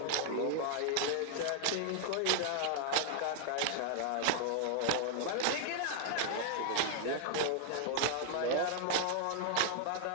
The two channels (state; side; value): different; both; correlation 0.00